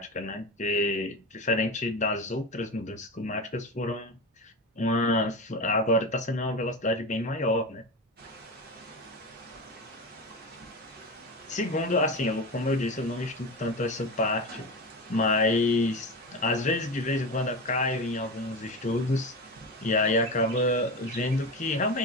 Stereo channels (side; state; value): both; normal; correlation 0.23